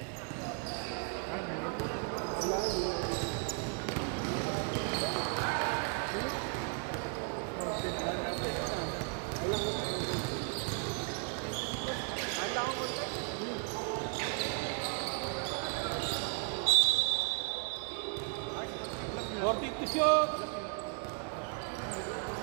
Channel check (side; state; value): left; quieter; 38.6 dB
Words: Working to shoot.